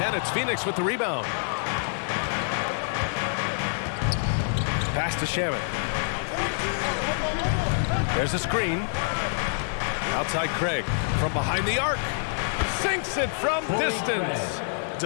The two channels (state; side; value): silent; right; 60 dB below the other